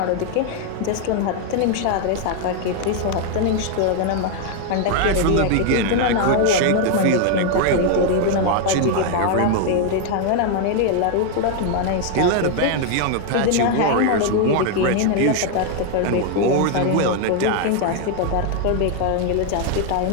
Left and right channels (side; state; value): both; different; correlation 0.00